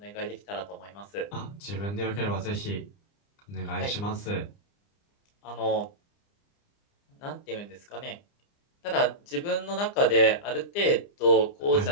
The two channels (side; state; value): right; late; 29 ms